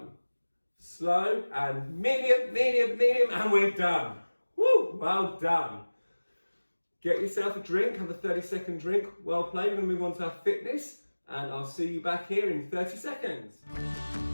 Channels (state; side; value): inverted; both; correlation -1.00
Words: slow. And medium, medium, medium. And we're done. Woo! Well done. Get yourself a drink. Have a 30-second drink. Well played. We're going to move on to our fitness. And I'll see you back here in 30 seconds.